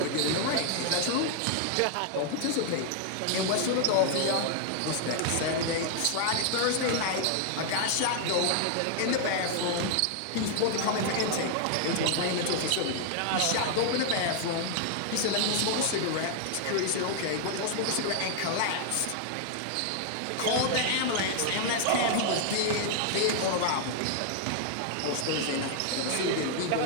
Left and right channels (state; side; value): different; both; correlation 0.00